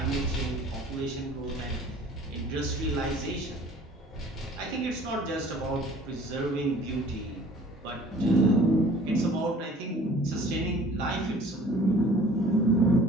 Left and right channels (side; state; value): both; normal; correlation 0.50